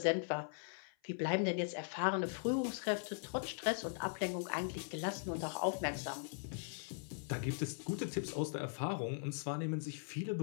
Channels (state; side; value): silent; right; 51 dB below the other